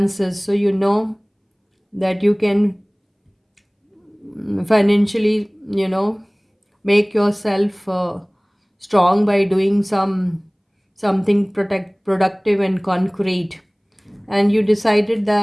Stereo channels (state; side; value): identical; both; correlation 1.00